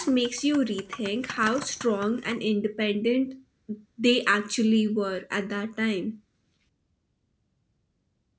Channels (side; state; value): both; identical; correlation 1.00